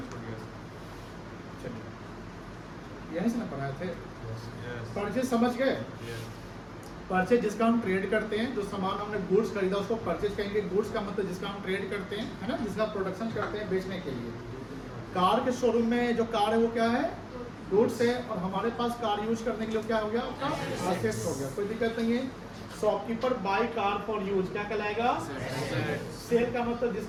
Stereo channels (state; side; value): identical; both; correlation 1.00